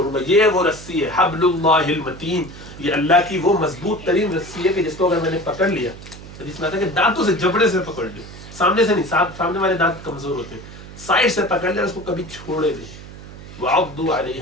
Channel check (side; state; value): right; noise; hum, 15 dB below the sound